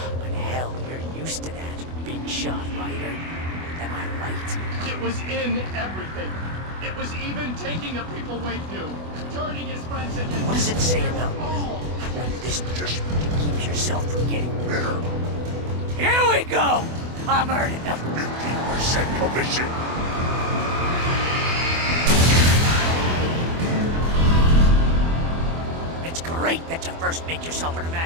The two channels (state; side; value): late; left; 24 ms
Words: But hell, you're used to that, big shot writer. Am I right? It was in everything. It was even taking the people Wake knew, turning his friends into... What does it say about under this just to keep yourself from getting better? Here we go! I'm earning the 15% commission. It's great that you first make yourself an